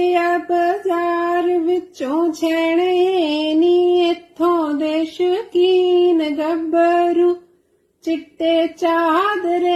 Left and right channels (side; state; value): both; identical; correlation 1.00